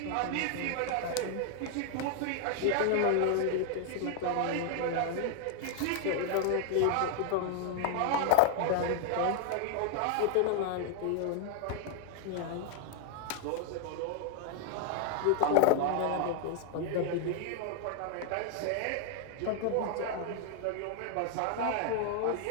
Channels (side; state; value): both; different; correlation 0.00